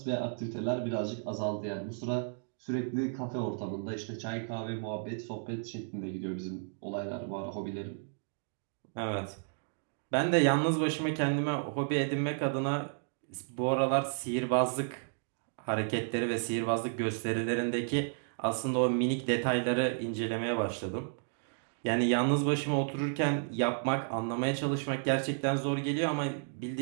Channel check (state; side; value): silent; left; digital silence